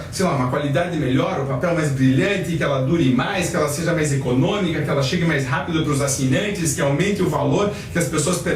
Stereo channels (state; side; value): identical; both; correlation 1.00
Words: sei lá, uma qualidade melhor, o papel mais brilhante, que ela dure mais, que ela seja mais econômica, que ela chegue mais rápido para os assinantes, que aumente o valor, que as pessoas